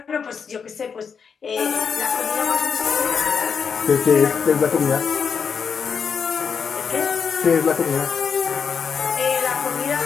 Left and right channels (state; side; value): quieter; right; 6.3 dB